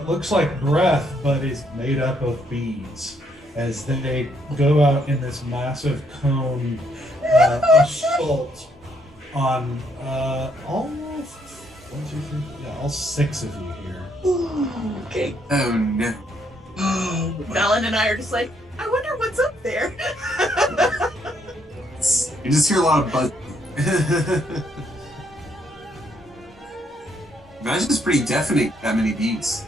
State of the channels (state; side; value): normal; both; correlation 0.72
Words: looks like breath but is made up of bees as they go out in this massive cone assault on all 6 of you here. Okay. Oh no. Valen and I are just like, I wonder what's up there. You just hear a lot of buzz. Imagine it's pretty deafening, that many beats.